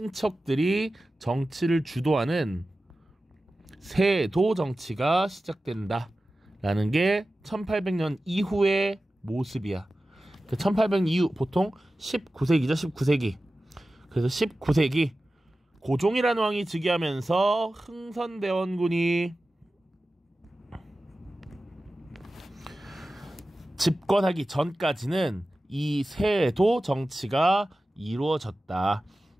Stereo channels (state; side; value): normal; both; correlation 0.95